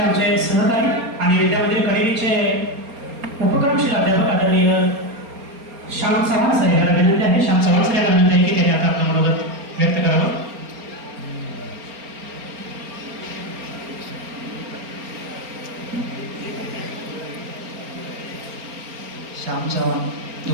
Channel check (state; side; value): late; left; 4.3 ms